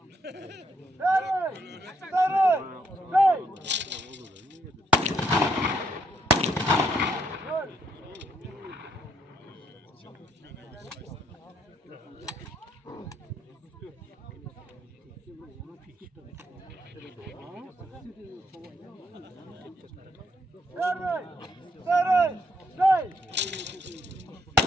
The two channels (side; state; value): both; normal; correlation 0.73